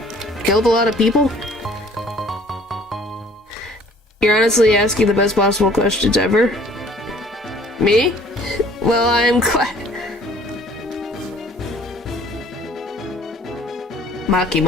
killed a lot of people. You're honestly asking the best possible questions ever. Me? Well, I'm glad.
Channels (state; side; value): normal; both; correlation 0.55